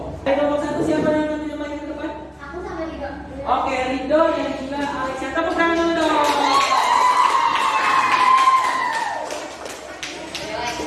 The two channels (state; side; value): identical; both; correlation 1.00